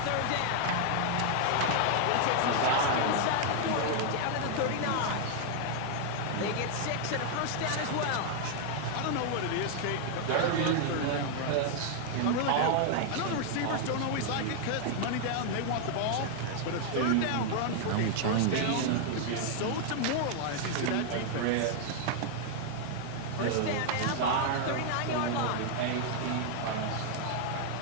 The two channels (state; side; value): different; both; correlation 0.00